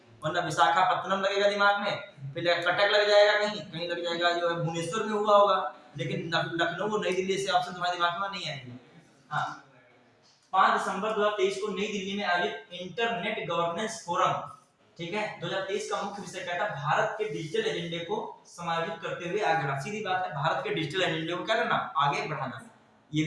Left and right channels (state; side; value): identical; both; correlation 1.00